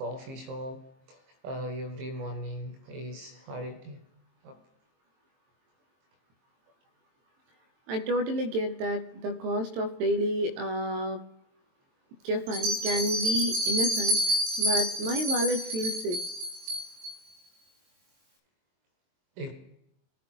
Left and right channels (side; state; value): left; late; 22 ms